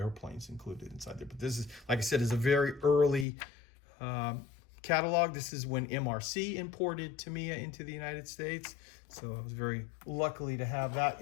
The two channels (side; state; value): right; drops out; at 3.2 s